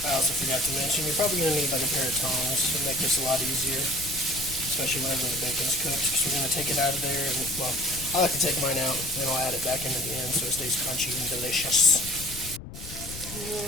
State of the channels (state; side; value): noise; left; rumble, 12 dB below the sound